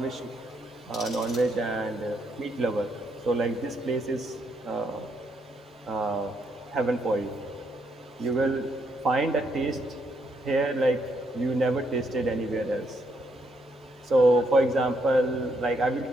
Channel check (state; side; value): normal; both; correlation 0.75